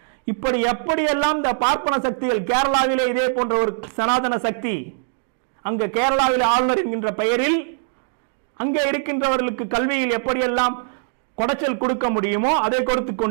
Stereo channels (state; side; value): silent; left; digital silence